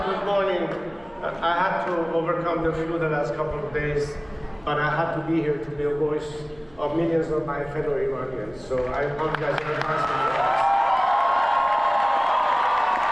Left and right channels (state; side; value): noise; right; hum, 28 dB below the sound